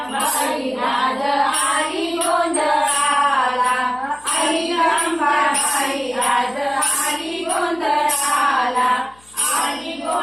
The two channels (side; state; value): left; noise; hum, 29 dB below the sound